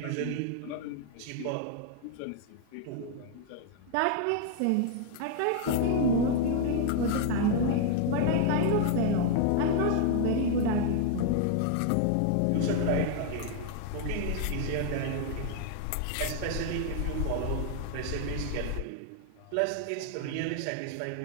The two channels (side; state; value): both; different; correlation 0.00